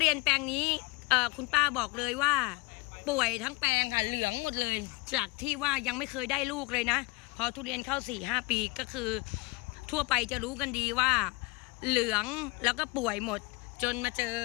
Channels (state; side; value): quieter; right; 25.1 dB